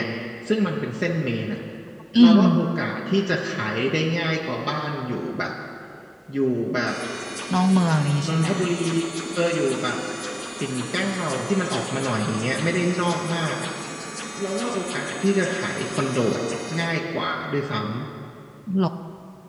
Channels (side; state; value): both; identical; correlation 1.00